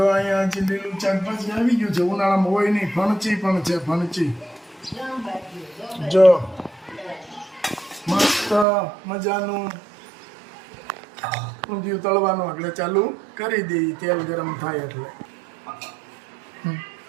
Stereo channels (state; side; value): drops out; left; at 8.7 s